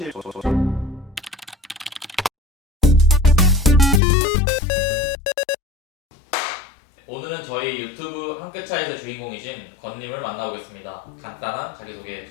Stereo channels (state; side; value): drops out; right; at 4.0 s